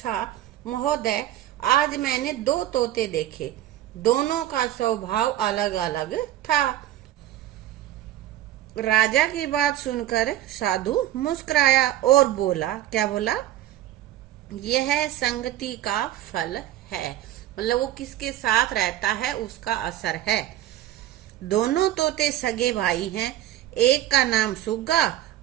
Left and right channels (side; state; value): left; quieter; 13.2 dB